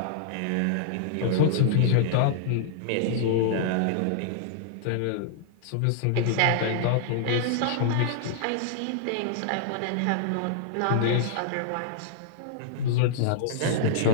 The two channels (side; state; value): both; different; correlation -0.01